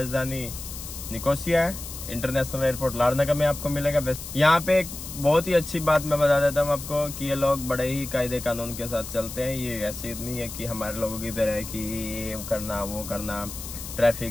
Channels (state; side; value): noise; left; hiss, 10 dB below the sound